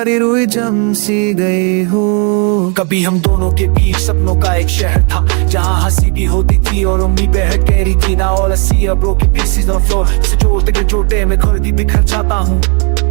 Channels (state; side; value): quieter; left; 37.2 dB